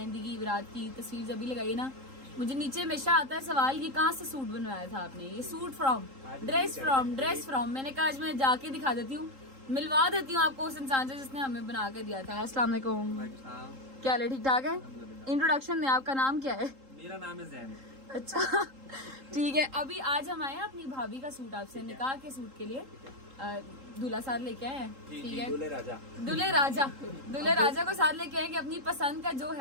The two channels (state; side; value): late; left; 3.8 ms